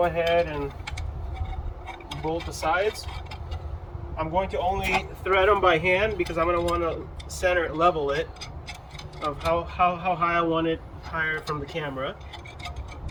ahead and bolt the sides. I'm going to only thread them by hand because I'm going to want to center level it of how high I want it higher from the camera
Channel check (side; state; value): both; identical; correlation 1.00